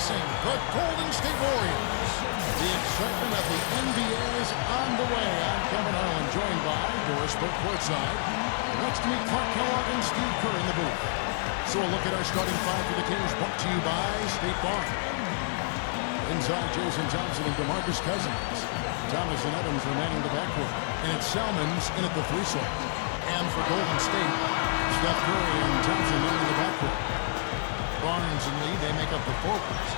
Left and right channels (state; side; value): silent; right; digital silence